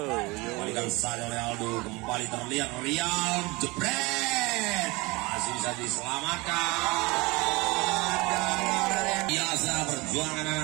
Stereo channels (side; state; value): left; quieter; 24.3 dB